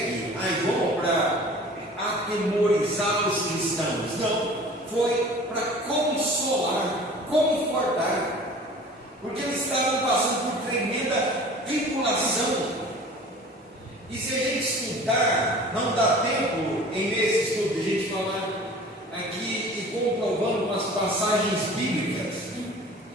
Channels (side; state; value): both; normal; correlation 0.44